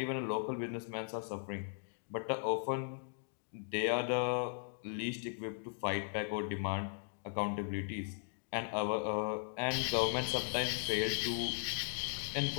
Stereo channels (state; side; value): silent; right; digital silence